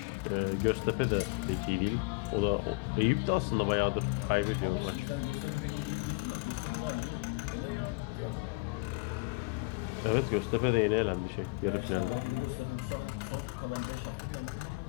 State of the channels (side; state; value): right; quieter; 27.3 dB